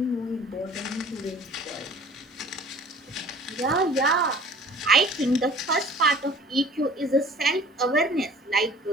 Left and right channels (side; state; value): both; normal; correlation 0.48